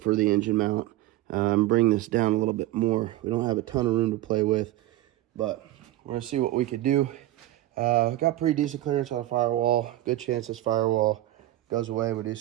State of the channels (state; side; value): quieter; left; 15.4 dB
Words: the engine mount. Bring this down a little bit more. We don't have a ton of room to play with, but we're going to see what we could do. Got pretty decent clearance on the firewall. Good chance this firewall goes away. We do